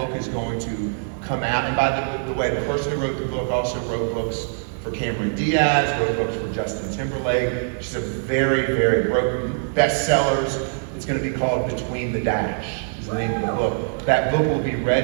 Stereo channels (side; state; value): left; silent; 63 dB below the other